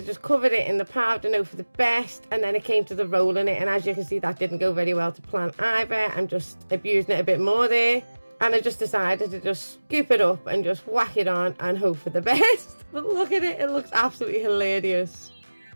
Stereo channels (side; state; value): both; inverted; correlation -1.00